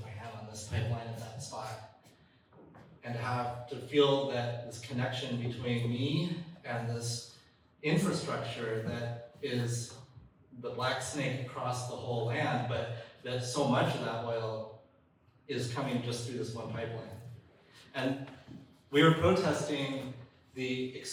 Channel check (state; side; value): identical; both; correlation 1.00